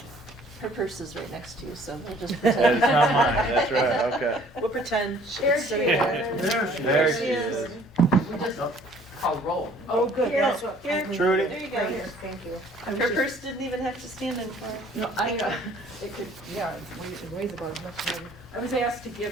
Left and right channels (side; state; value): both; normal; correlation 0.56